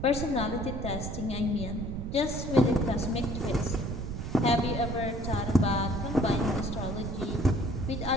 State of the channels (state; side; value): noise; right; rumble, 5 dB below the sound